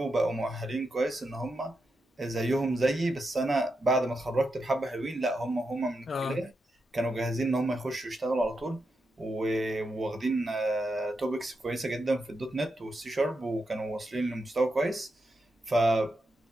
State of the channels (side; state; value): both; normal; correlation 0.86